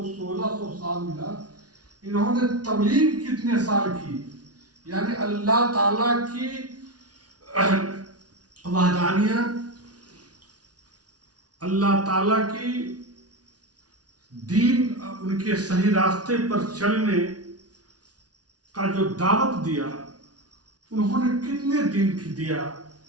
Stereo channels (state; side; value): late; left; 0.69 ms